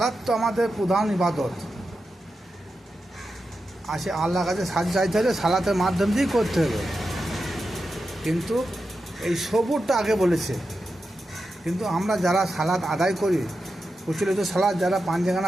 তো আমাদের প্রধান ইবাদত, আসে আল্লাহর কাছে সাহায্য চাইতে হলে সালাতের মাধ্যম দিয়েই করতে হবে। কিন্তু এই সবুরটা আগে বলেছে। কিন্তু আমরা যারা সালাত আদায় করি, প্রচলিত সালাত যারা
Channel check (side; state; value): both; normal; correlation 0.89